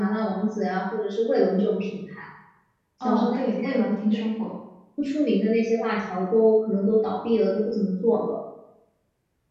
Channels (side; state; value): both; identical; correlation 1.00